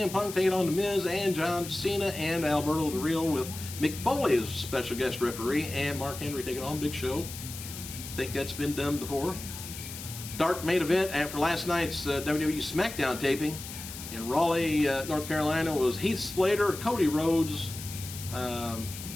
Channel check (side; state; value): left; noise; hiss, 11 dB below the sound